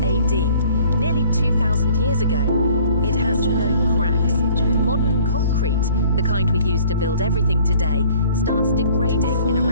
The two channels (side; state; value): both; inverted; correlation -0.53